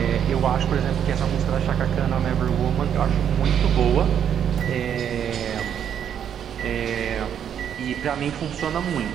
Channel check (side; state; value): left; quieter; 8.9 dB